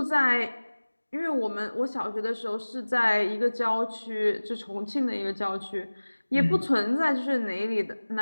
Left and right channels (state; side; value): inverted; both; correlation -1.00